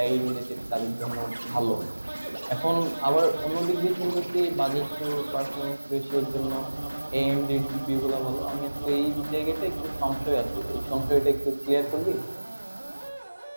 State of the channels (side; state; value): both; inverted; correlation -1.00